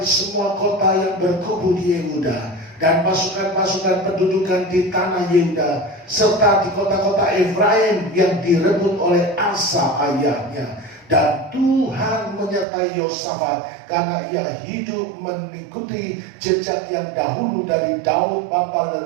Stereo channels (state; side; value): drops out; left; at 12.7 s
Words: semua kota yang berkubu di Yehuda dan pasukan-pasukan pendudukan di tanah Yehuda, serta di kota-kota Efraim yang direbut oleh Asa ayahnya. Dan Tuhan menyertai Yosafat karena ia hidup mengikuti jejak yang dahulu dari Daud bapa